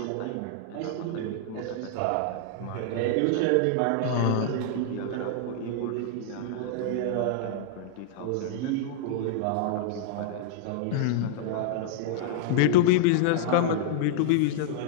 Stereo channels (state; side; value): different; both; correlation -0.01